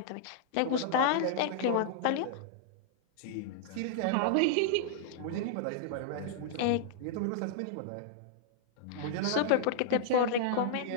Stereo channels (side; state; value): both; different; correlation -0.01